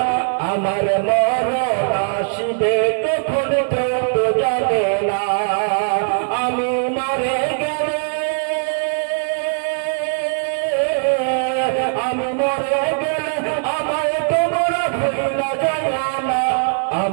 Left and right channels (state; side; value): silent; left; digital silence